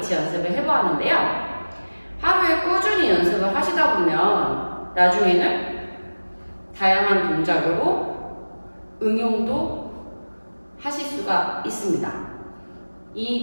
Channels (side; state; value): both; inverted; correlation -1.00